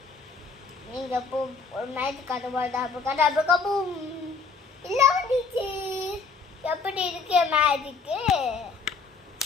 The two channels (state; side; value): quieter; right; 4.5 dB